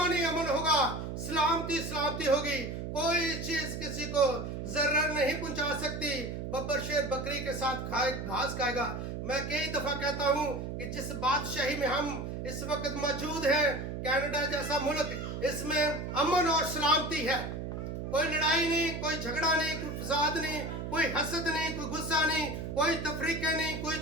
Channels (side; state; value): right; noise; hum, 5 dB below the sound